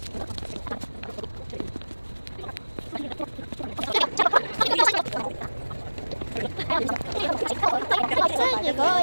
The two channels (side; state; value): both; inverted; correlation -1.00